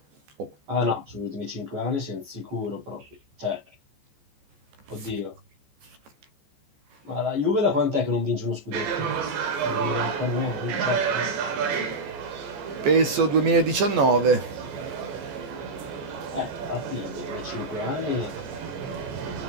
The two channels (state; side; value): late; left; 14 ms